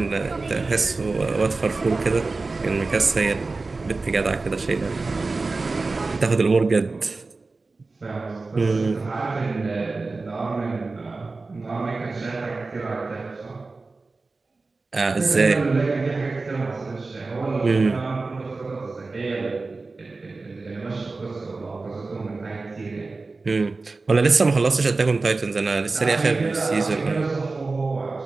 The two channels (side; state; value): left; quieter; 3.7 dB